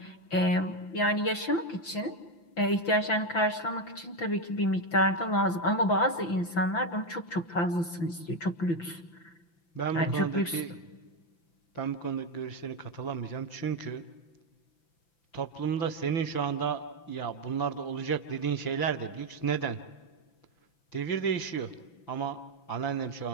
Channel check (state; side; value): late; right; 5.9 ms